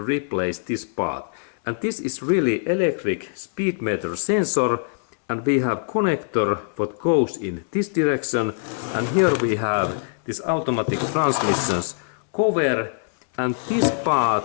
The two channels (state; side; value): silent; right; 63 dB below the other